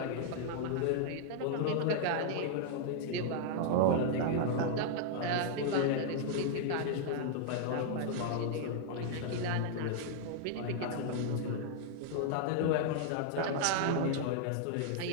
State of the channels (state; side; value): different; both; correlation -0.01